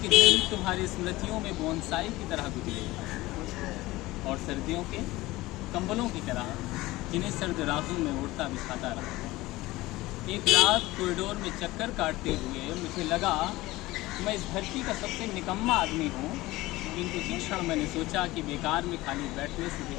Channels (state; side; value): quieter; right; 19.0 dB